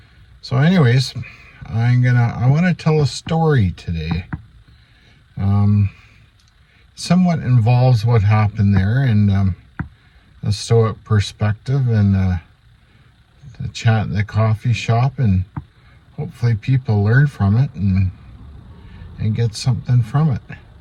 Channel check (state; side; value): identical; both; correlation 1.00